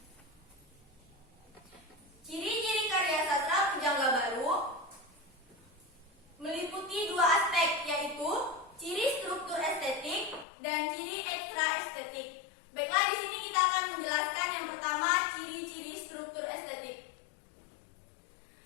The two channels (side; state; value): right; drops out; at 10.5 s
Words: Ciri-ciri karya sastra pujangga baru meliputi dua aspek, yaitu ciri struktur estetik dan ciri ekstra estetik. Baiklah, di sini kita akan menjelaskan yang pertama, ciri-ciri struktur estetik.